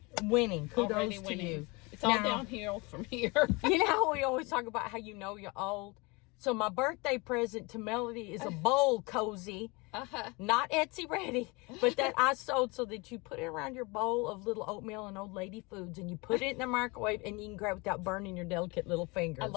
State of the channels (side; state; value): right; quieter; 26.7 dB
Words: Kudos Already to winning. you. It's all downhill from here. You know how we always talk about how you know you're old? So my birthday present to Melody is a bowl cozy. Not Etsy ready, but that I sold so that you put it around your bowl of little oatmeal and old lady foods, and you put it in the microwave, and you can grab it without burning your delicate little fingers. I